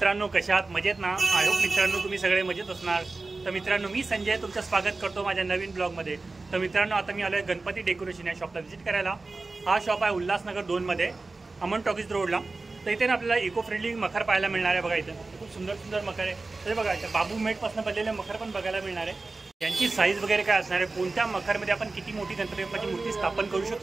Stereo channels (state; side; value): quieter; left; 3.5 dB